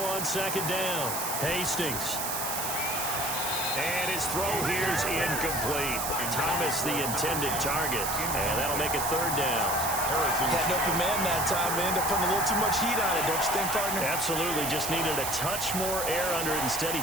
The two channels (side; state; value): right; noise; hiss, 3 dB below the sound